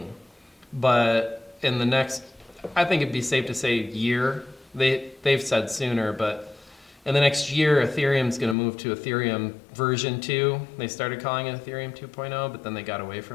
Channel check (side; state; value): right; drops out; at 8.6 s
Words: But in the next, I think it'd be safe to say year, they've said sooner, but in the next year, Ethereum's going to move to Ethereum version 2. They started calling it Ethereum 2.0, but then they got away